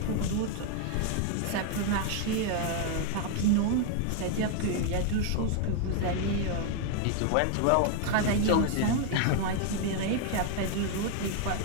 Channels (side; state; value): both; different; correlation 0.00